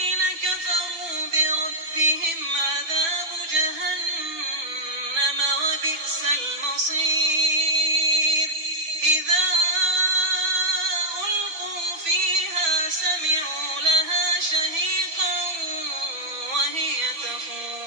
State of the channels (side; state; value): left; late; 5.8 ms